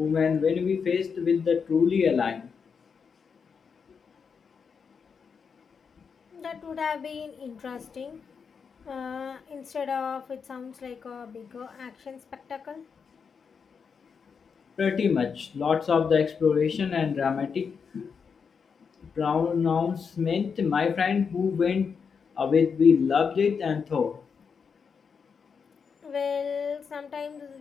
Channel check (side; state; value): right; quieter; 6.0 dB